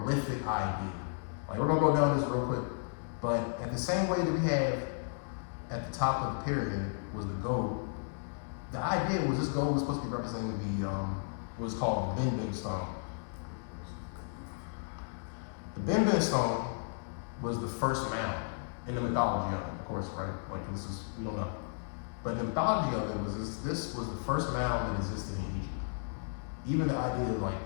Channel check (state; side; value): silent; right; digital silence